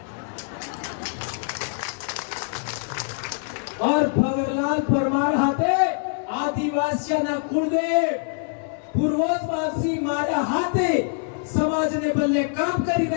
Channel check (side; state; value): right; silent; digital silence